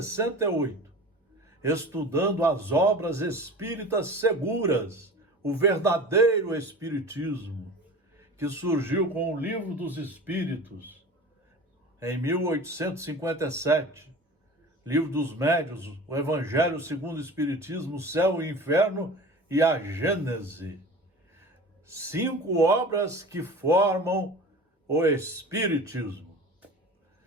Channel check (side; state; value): both; normal; correlation 0.37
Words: estudando as obras espíritas seguras, o verdadeiro espiritismo, que surgiu com o Livro dos Espíritos, em 1857, Livro dos Médiuns, o Evangelho segundo o Espiritismo, o Céu e o Inferno e a Gênese. 5 obras que formam o Espiritismo.